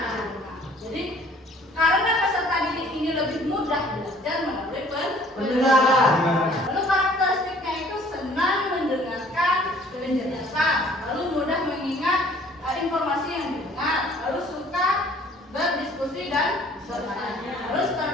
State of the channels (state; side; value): normal; both; correlation 0.55